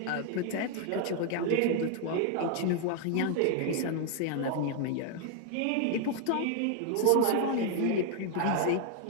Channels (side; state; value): both; different; correlation 0.00